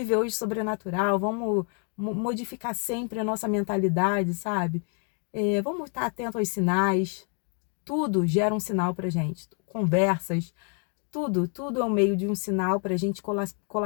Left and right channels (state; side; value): quieter; right; 39.7 dB